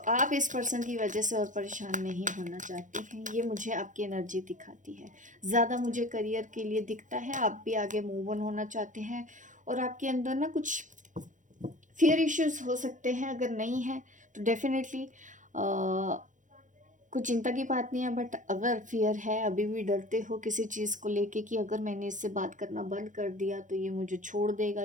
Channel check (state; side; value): late; left; 0.37 ms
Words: आप इस पर्सन की वजह से और परेशान नहीं होना चाहती हैं, ये मुझे आपकी एनर्जी दिखाती है। ज़्यादा मुझे करियर के लिए दिखता है, आप भी आगे मूव ऑन होना चाहते हैं, और आपके अंदर ना कुछ फियर इश्यूज हो सकते हैं। अगर नहीं है तो डेफिनेटली कुछ चिंता की बात नहीं है, बट अगर फियर है, अभी भी डरते हो किसी चीज़ को लेके कि अगर मैंने इससे बात करना बंद कर दिया तो ये मुझे छोड़ देगा,